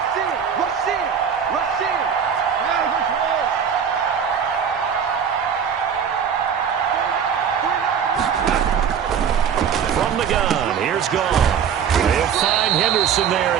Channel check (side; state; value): left; quieter; 7.6 dB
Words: From the gun, here's Goff. They'll find Henderson there.